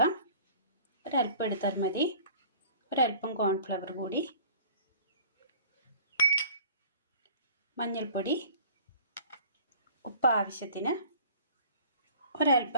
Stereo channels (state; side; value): inverted; both; correlation -0.47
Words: ഒരല്പം എടുത്താൽ മതി. ഒരല്പം കോൺഫ്ലവർ കൂടി, മഞ്ഞൾപ്പൊടി, ഉപ്പ് ആവശ്യത്തിന്,